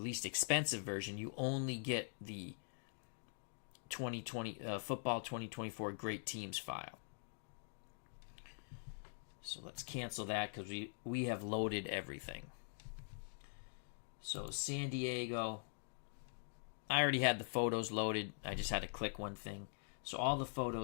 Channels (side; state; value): right; silent; digital silence